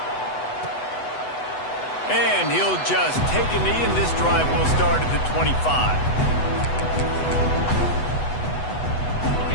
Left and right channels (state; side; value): late; right; 8.1 ms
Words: And he'll just take a knee, and this drive will start at the 25.